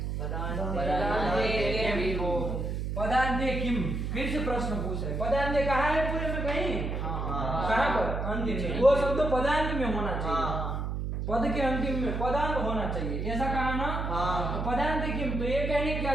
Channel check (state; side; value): noise; right; hum, 2 dB below the sound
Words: पदान्ते किम, फिर से प्रश्न पूछ रहे। पदान्ते कहाँ है पूरे में? कहीं कहाँ पर? अंतिम में। वो शब्द पदांत में होना चाहिए, पद के अंतिम में पदांत होना चाहिए, ऐसा कहा ना? तो पदांत किम, तो ये कहने की क्या